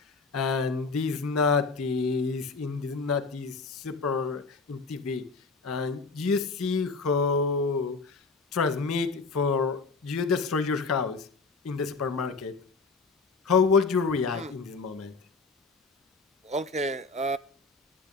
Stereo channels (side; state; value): right; quieter; 4.2 dB